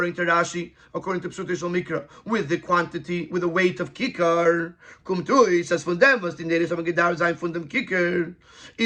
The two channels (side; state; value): both; identical; correlation 1.00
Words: to Rashi, according to Psutishal Mikra, with the quantity, with the weight of Kikar. Kumtui says von dem, was die Neres haben gedauert sein von dem Kikar.